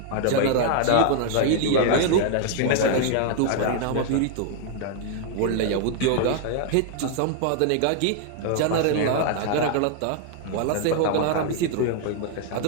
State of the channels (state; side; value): different; both; correlation 0.00